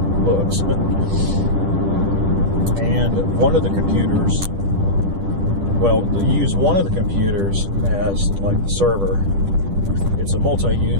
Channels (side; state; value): left; late; 10 ms